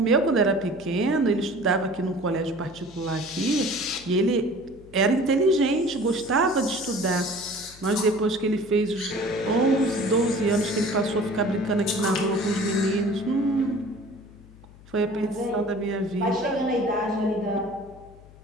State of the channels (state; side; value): noise; left; hum, 22 dB below the sound